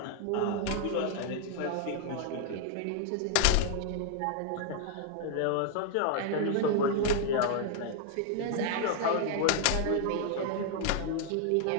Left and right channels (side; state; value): both; different; correlation 0.00